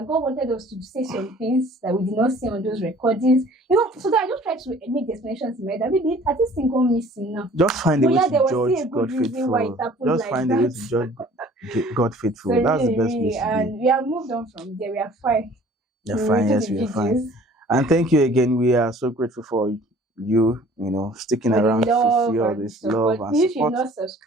God wanted us to say some things that we did not see on those recordings. So that I just try to make the explanations in my head that maybe at this thing gone missing now. Just find a But way yeah, to there was still a judge good God reason why it faithful. happened Just like find a way that. to judge God faithful. So That's the really, best really, place to be. and we have moved on from there. We are fine. You're We fine. redo Yes, the we are fine. videos And thank you again. We are so grateful for you, sticking for the around to love see all and the this love support. and If you're support. not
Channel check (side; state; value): both; normal; correlation 0.52